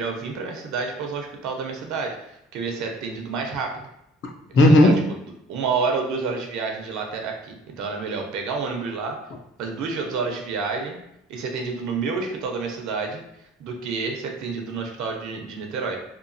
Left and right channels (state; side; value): normal; both; correlation 0.51